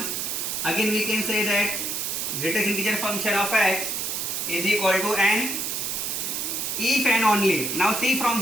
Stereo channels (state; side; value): noise; right; hiss, 2 dB below the sound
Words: Again we can say that greatest integer function of x is equal to n if and only if. Now see from